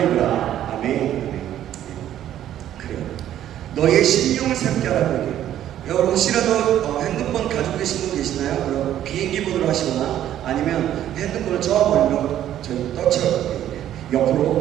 입으라. 아멘. 그래요. 너희의 심령을 새롭게 하라고 얘기해요. 여러분 혹시라도 핸드폰 가지고 계신 분 계시나요? 그럼 비행기 모드로 하시거나 아니면 핸드폰을 저 멀리로 저희 떠쳐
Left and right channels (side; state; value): left; quieter; 11.6 dB